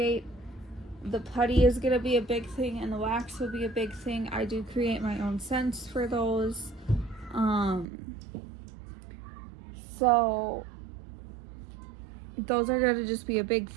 The putty is gonna be a big thing, and the wax will be a big thing. I do create my own scents for those. So those are gonna just be a big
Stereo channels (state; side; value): drops out; left; at 7.9 s